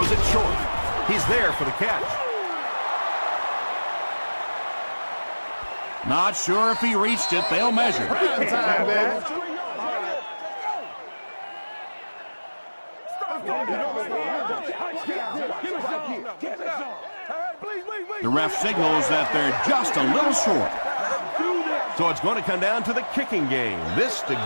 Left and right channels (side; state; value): both; inverted; correlation -1.00